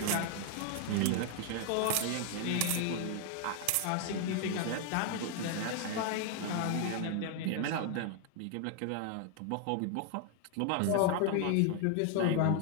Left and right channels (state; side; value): different; both; correlation 0.00